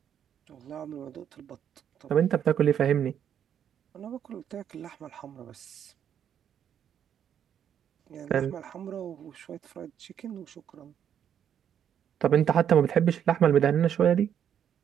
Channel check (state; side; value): quieter; left; 9.1 dB